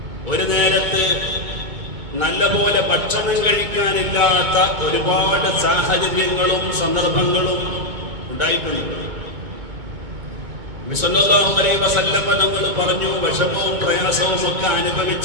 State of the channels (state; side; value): late; left; 2.2 ms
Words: ഒരു നേരത്ത് നല്ലപോലെ ഭക്ഷണം കഴിക്കാനില്ലാത്ത ഒരുപാട് സാഹചര്യങ്ങളും സന്ദർഭങ്ങളും ഉണ്ടായിട്ടുണ്ട്. നബി സല്ലല്ലാഹു അലൈഹി വസല്ലം തങ്ങൾ പറഞ്ഞു, വിഷമവും പ്രയാസവും ഒക്കെ